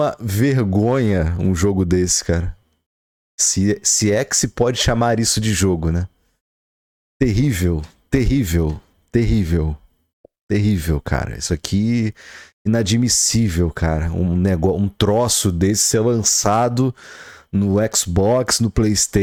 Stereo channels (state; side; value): identical; both; correlation 1.00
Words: vergonha um jogo desse, cara. Se é que se pode chamar isso de jogo, né? Terrível, terrível, terrível, terrível, cara. Isso aqui inadmissível, cara. Um troço desse ser lançado no Xbox, no